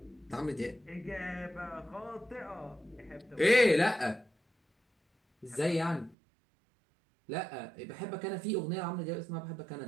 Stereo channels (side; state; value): left; drops out; at 6.2 s